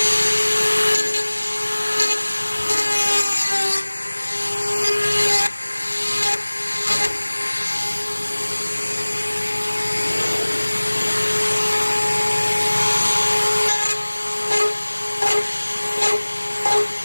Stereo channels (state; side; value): inverted; both; correlation -1.00